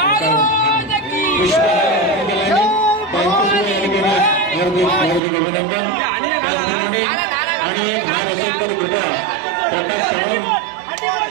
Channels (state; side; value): drops out; left; at 5.2 s